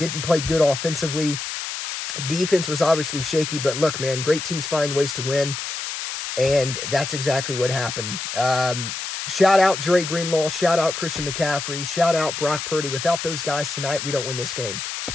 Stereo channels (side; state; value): left; noise; hiss, 6 dB below the sound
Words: play good offensively. Defense was obviously shaky, but look, man, great teams find ways to win, and that's exactly what happened. Shout out Dre Greenlaw, shout out Christian McCaffrey, shout out Brock Purdy. Without those guys tonight, we don't win this game.